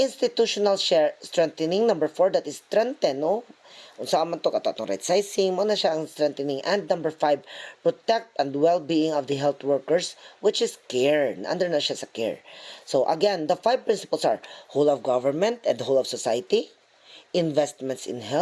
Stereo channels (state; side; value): identical; both; correlation 1.00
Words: share strengthening. Number 4, that is strengthen, no. Unsa man to katong right sizing mo na siya ang strengthening. And number 5, protect and well-being of the health workers, which is care. Under na siya sa care. So again, the 5 principles are whole of government and whole of society, investments in